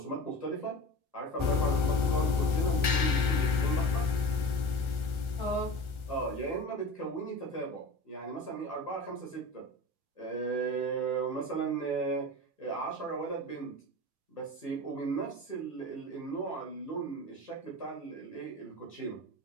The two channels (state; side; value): late; left; 1.3 ms